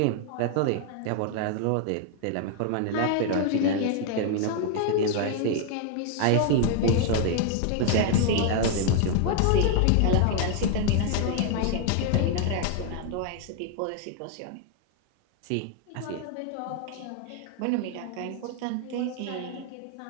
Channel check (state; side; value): different; both; correlation 0.00